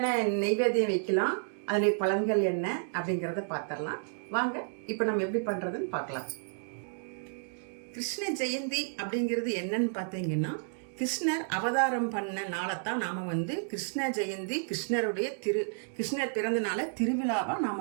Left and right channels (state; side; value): silent; left; digital silence